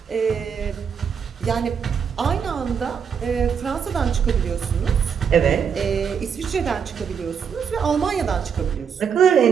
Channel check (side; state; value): left; quieter; 7.0 dB